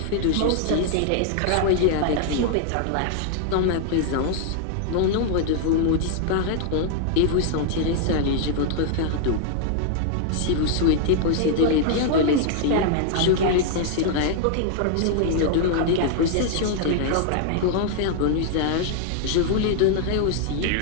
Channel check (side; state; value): both; different; correlation 0.00